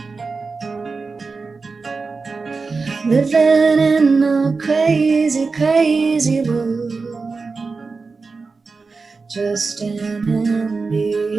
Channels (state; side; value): quieter; left; 4.3 dB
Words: living in a crazy, crazy world, just an